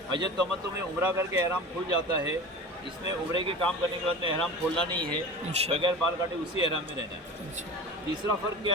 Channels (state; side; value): normal; both; correlation 0.34